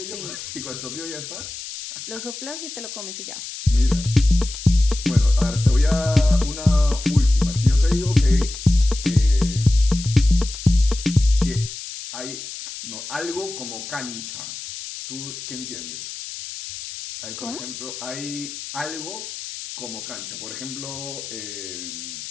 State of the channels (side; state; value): left; noise; hiss, 10 dB below the sound